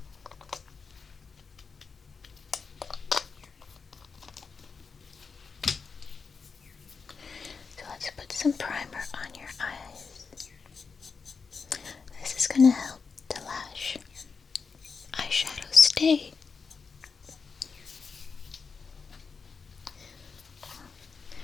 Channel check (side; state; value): right; quieter; 5.2 dB